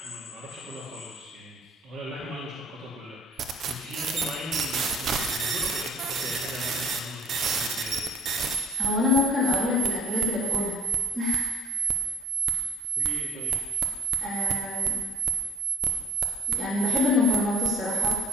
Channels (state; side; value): normal; both; correlation 0.58